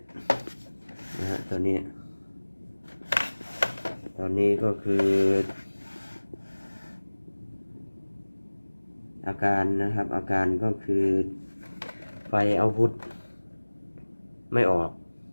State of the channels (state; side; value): inverted; both; correlation -1.00